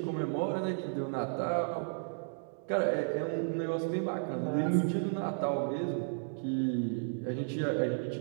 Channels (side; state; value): left; silent; digital silence